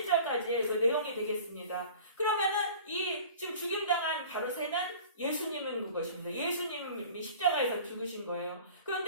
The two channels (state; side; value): inverted; both; correlation -0.43